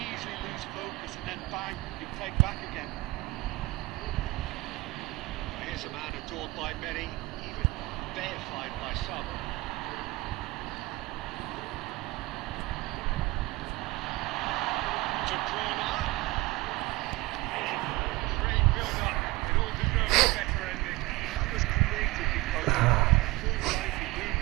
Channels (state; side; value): quieter; left; 21.3 dB